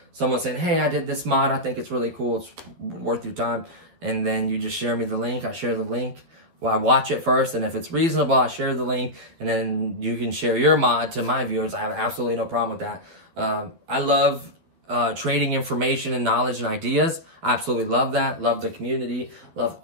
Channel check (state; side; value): late; left; 12 ms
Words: someone saying, hey, I did this mod. I think it's really cool. It's worth your time. And then you just share me the link. I share the link. Well, I watch it first, and if it's reasonable, I share the link, and then you can share your mod to my viewers. I have absolutely no problem with that. I love trading information and knowledge and ideas. I absolutely love that. Love the community. Love